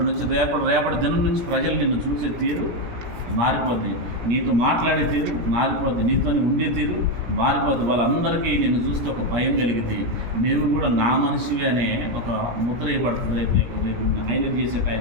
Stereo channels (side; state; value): left; late; 17 ms